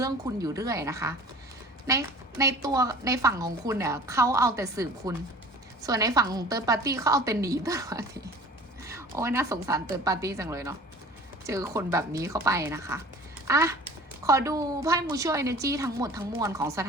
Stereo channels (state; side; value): normal; both; correlation 0.44